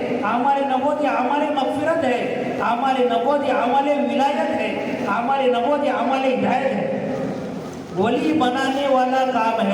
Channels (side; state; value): both; identical; correlation 1.00